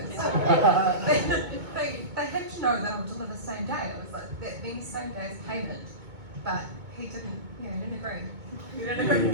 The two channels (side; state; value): left; late; 2.2 ms